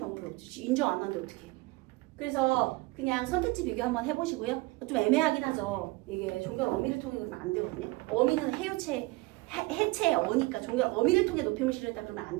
방법이 없지. 인정 안 하는데 어떻게 해. 그래서 그냥 선택지 비교 한번 해보시고요. 좀 애매하긴 하죠. 이게 종결 어미를 통해 그러면 안 되거든요. 어미는 해체의 어니까 종결 어미를 통해 높임을 실현했다 그러면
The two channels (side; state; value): left; quieter; 22.4 dB